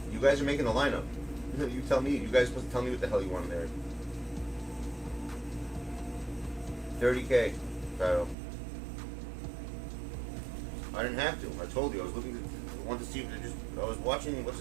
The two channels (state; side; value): drops out; left; at 8.3 s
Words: You guys are making the lineup. You tell me. You guys are supposed to tell me what the hell you want in there. 30K. Title. I didn't have to. I told you. I was looking to. Want to see if it just. I was watching what's